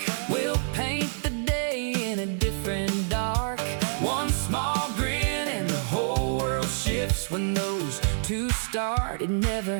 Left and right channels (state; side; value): silent; left; digital silence